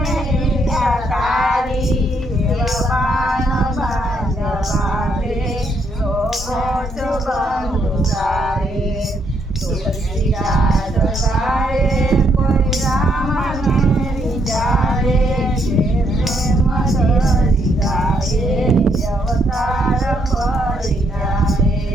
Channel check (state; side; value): normal; both; correlation 0.73